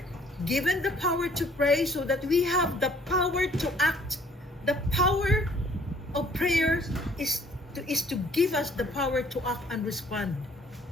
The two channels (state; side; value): normal; both; correlation 0.59